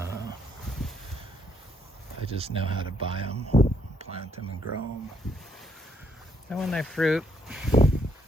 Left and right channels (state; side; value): normal; both; correlation 0.71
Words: just know how to buy them, plant them, and grow them. And when they fruit,